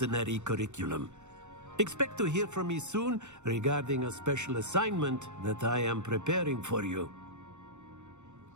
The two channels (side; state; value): left; late; 0.84 ms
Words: curriculum. Expect to hear from me soon regarding a special assignment that I am preparing for you.